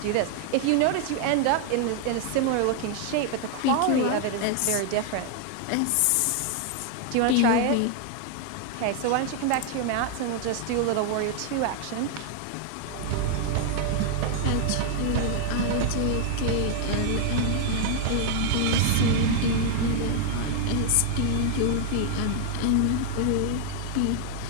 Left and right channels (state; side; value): different; both; correlation 0.00